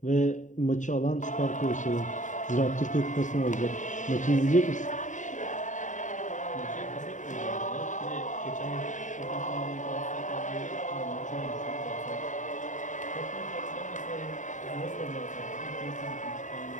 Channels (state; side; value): late; right; 0.36 ms